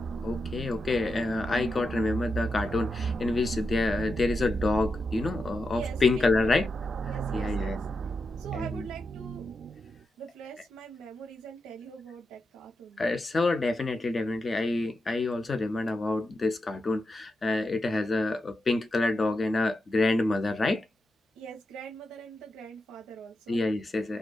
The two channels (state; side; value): normal; both; correlation 0.88